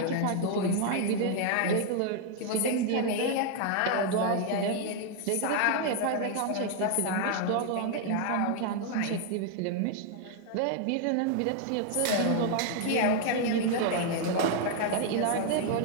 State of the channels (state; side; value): different; both; correlation 0.00